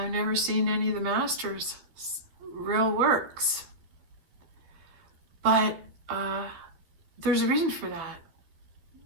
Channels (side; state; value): left; late; 13 ms